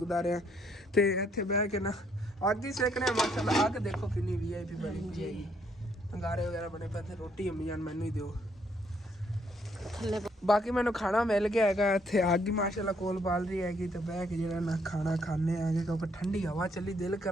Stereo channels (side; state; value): both; normal; correlation 0.69